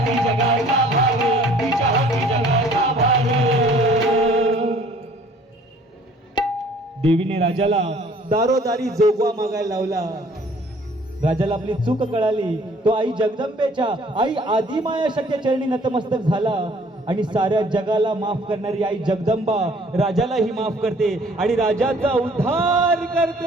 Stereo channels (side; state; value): both; normal; correlation 0.55